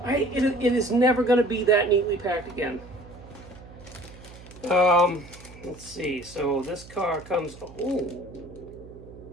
It is never going to be that neatly packed again. Let's see. So this car comes... Oh.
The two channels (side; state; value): right; noise; hum, 19 dB below the sound